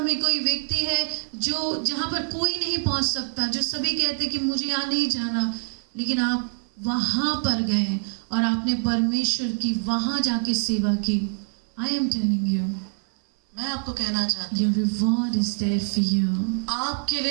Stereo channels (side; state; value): left; silent; 62 dB below the other